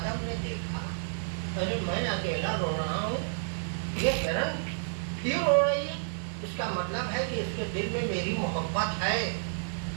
ने देखा, अरे मैं अकेला रो रहा हूँ, ये हिरन क्यों रो रही है? इसका मतलब है कि इसके दिल में मेरी मोहब्बत है।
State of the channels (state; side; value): silent; left; digital silence